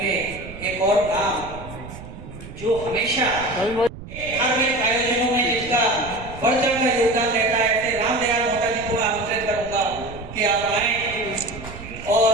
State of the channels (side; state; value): right; noise; rumble, 14 dB below the sound